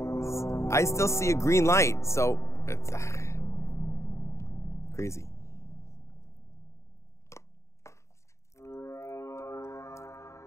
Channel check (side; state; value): right; late; 0.14 ms